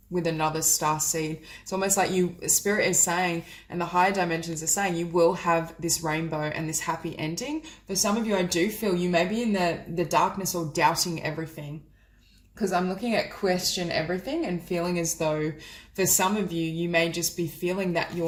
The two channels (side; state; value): both; identical; correlation 1.00